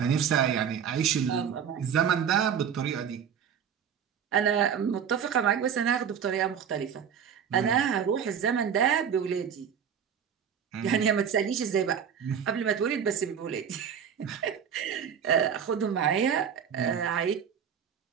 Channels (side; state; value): left; quieter; 7.8 dB